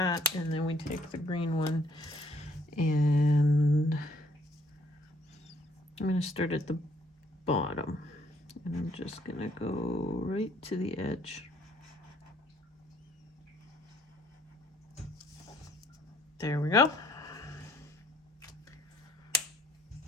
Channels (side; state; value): both; normal; correlation 0.64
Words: and then we take the green one, and I'm gonna start at the bottom, and I'm just gonna go right to the edge. There we go.